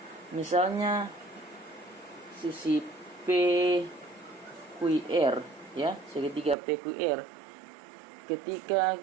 misalnya sisi PQR, ya, segitiga PQR. Ketika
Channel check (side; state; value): left; drops out; at 6.6 s